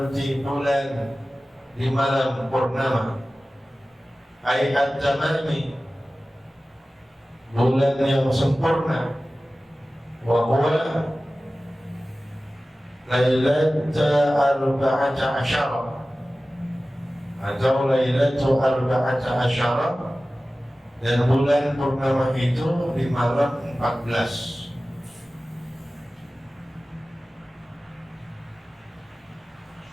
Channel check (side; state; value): both; normal; correlation 0.96